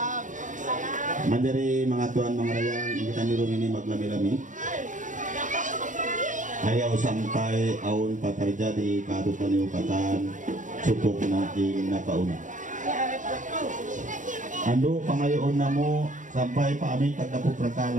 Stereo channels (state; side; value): late; left; 0.37 ms